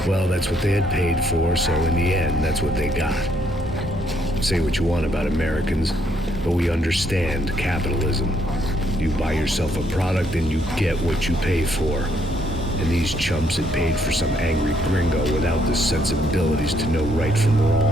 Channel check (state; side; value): normal; both; correlation 0.71